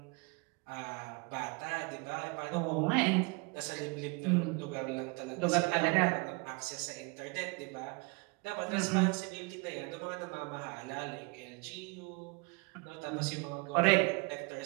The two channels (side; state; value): left; quieter; 29.3 dB